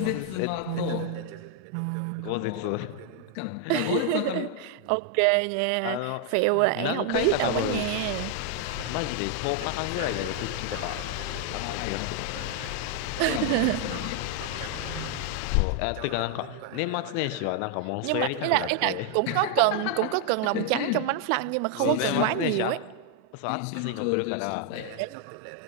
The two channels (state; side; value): different; both; correlation 0.00